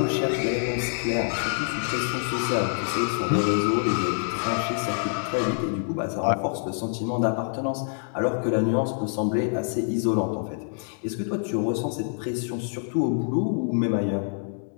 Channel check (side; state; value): right; silent; digital silence